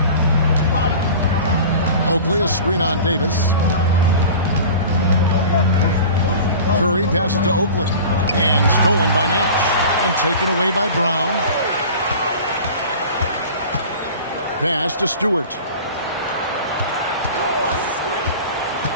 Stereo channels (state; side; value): inverted; both; correlation -0.38